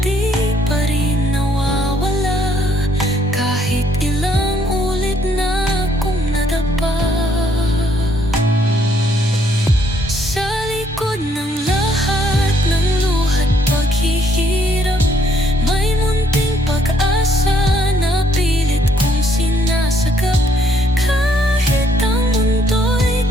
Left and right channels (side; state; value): both; normal; correlation 0.68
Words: di pa rin nawawala, kahit ilang ulit na akong nadapa. Sa likod ng lahat ng luha't paghihirap, may munting pag-asa na pilit kong sinasagap. Kahit ang mundo'y